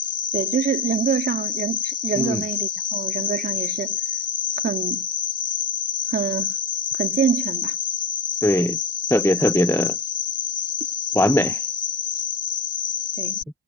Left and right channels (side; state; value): both; normal; correlation 0.28